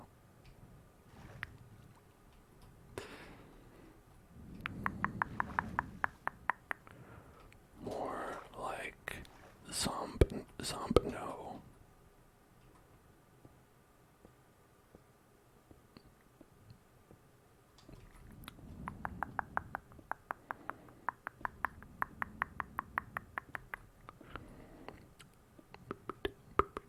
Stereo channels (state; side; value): identical; both; correlation 1.00